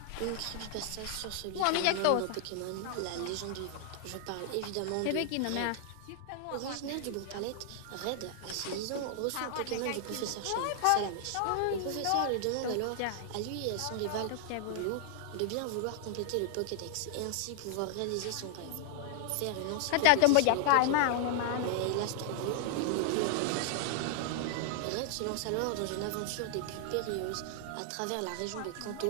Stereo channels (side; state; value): both; different; correlation 0.00